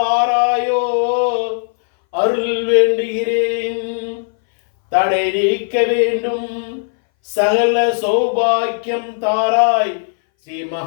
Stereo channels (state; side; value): silent; right; 62 dB below the other